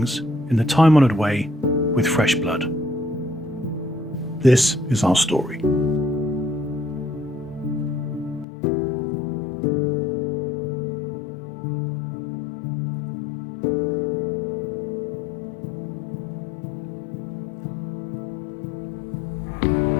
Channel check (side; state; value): right; drops out; at 8.5 s